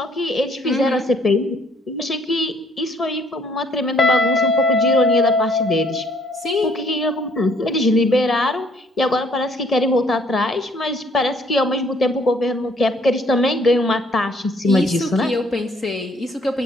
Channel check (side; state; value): both; normal; correlation 0.63